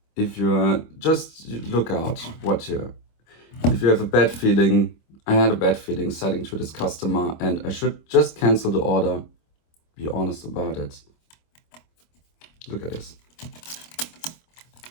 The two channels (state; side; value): late; right; 25 ms